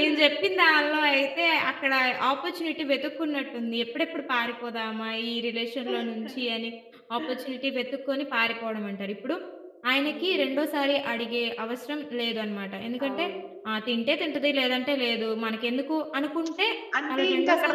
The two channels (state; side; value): identical; both; correlation 1.00